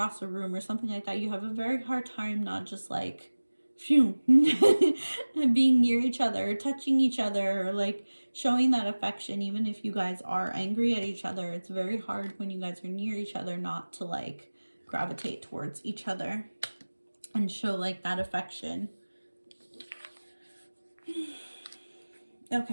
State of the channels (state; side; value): inverted; both; correlation -1.00